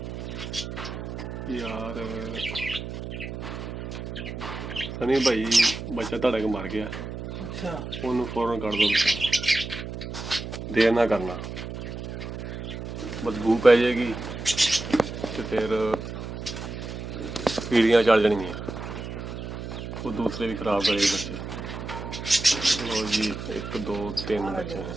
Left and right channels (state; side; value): noise; right; hum, 7 dB below the sound